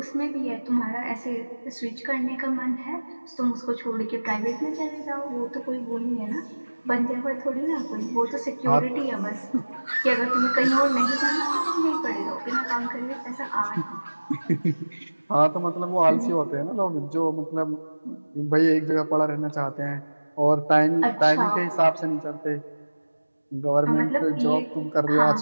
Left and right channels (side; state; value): both; inverted; correlation -1.00